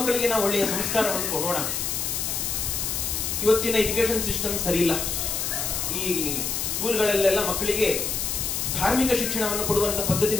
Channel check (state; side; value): noise; left; hiss, 1 dB below the sound